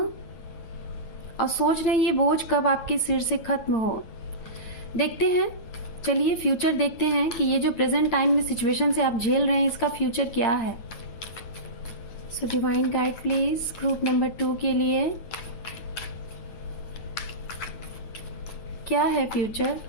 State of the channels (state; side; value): late; right; 9.2 ms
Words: और सोच रहे हैं ये बोझ कब आपके सिर से खत्म हो। देखते हैं, चलिए फ्यूचर देखते हैं कि ये जो प्रेजेंट टाइम में सिचुएशन से आप झेल रहे हैं इसका फ्यूचर क्या है। So divine guide please group number 2 के लिए क्या है फ्यूचर